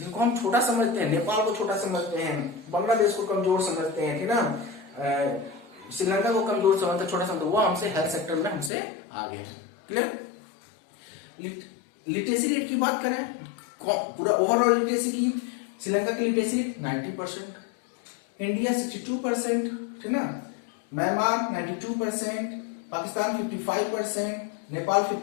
हम छोटा समझते हैं, नेपाल को छोटा समझते हैं, बांग्लादेश को कमजोर समझते हैं, ठीक ना, श्रीलंका को कमजोर समझते, छोटा समझते, वो हमसे हेल्थ सेक्टर में हमसे आगे है। क्लियर। लिटरेसी रेट की बात करें, पूरा ओवरऑल लिटरेसी की, श्रीलंका की लिटरेसी रेट 90%, इंडिया 62%, ठीक ना, म्यांमार 92%, पाकिस्तान 55%, नेपाल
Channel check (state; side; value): drops out; right; at 8.7 s